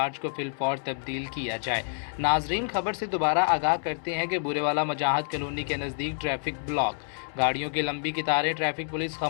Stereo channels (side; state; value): right; silent; 59 dB below the other